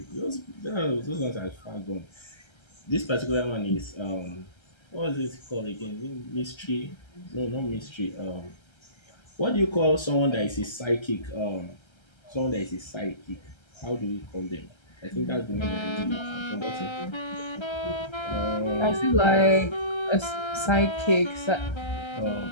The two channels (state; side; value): late; right; 1.3 ms